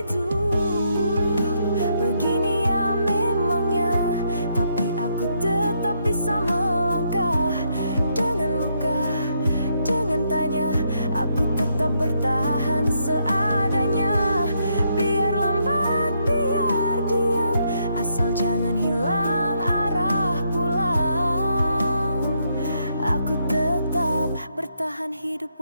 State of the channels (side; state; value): both; inverted; correlation -0.76